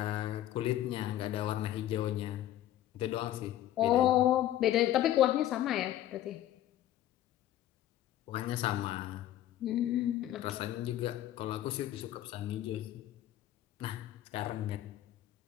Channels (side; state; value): right; quieter; 12.8 dB